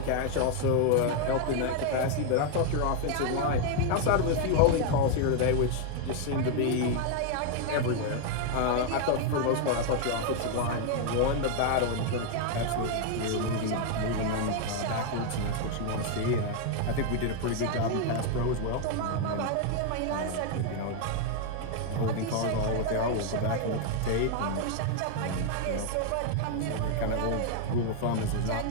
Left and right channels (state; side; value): different; both; correlation 0.00